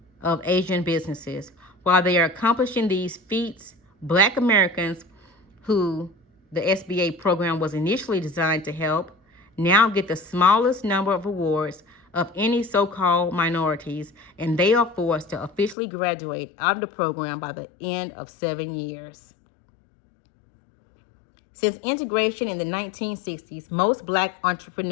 of Asian businesses. While they are accomplishing these feats, Black Americans, who the SBA program was initially designed to help, now get the smallest number of awards of any so-called minorities, and they are forced to officially graduate out of the program by the end of 7 years. Since integration in the 1960s, most Black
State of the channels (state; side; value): drops out; right; at 15.8 s